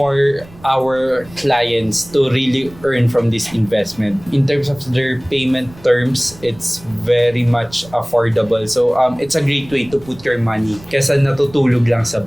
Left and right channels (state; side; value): noise; right; rumble, 21 dB below the sound